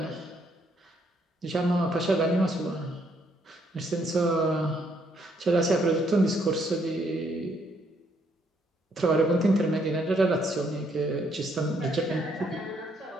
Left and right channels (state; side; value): normal; both; correlation 0.71